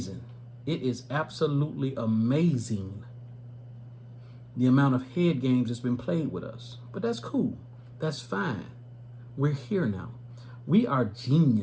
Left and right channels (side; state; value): both; identical; correlation 1.00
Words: It is absolutely amazing the amount of head games that's been played with us. But that's cool. That's fine. We're here now. We are